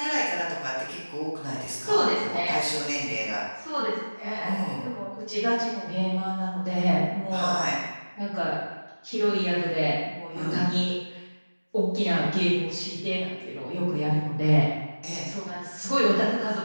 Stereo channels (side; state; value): both; inverted; correlation -1.00